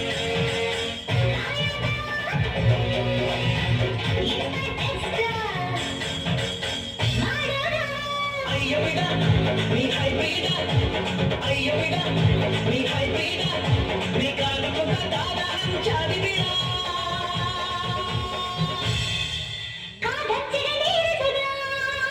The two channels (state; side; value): identical; both; correlation 1.00